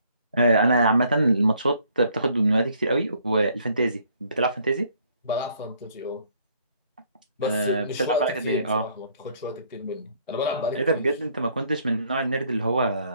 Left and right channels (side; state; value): both; inverted; correlation -0.64